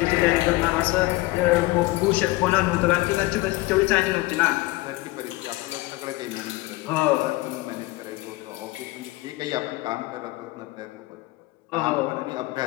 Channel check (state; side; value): quieter; right; 20.2 dB